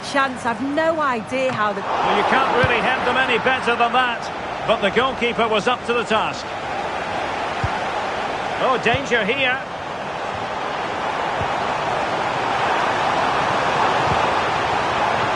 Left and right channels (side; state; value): both; identical; correlation 1.00